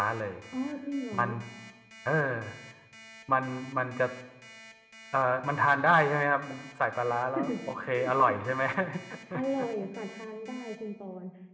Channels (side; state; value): both; identical; correlation 1.00